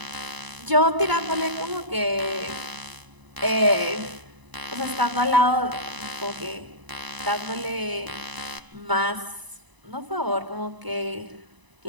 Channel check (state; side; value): late; left; 1.0 ms